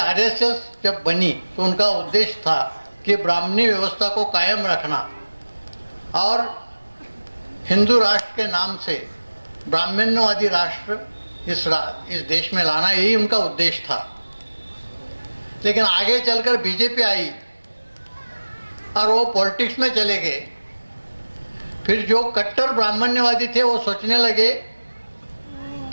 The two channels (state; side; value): inverted; both; correlation -1.00